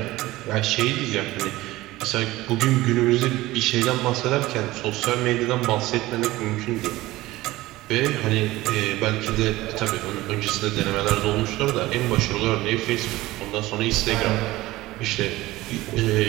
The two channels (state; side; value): quieter; left; 18.1 dB